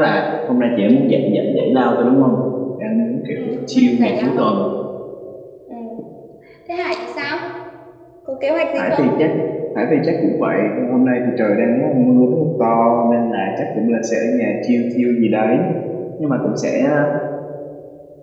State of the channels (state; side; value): identical; both; correlation 1.00